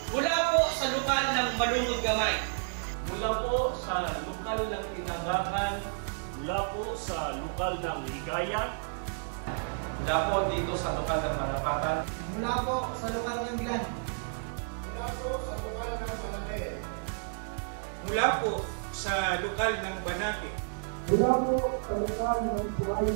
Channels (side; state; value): left; silent; digital silence